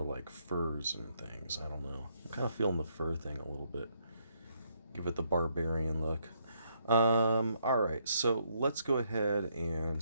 like furs and things? I don't know. I'm kind of feeling the fur thing a little bit. Give it the barbarian look. Alright, so let's go ahead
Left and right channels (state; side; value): inverted; both; correlation -0.73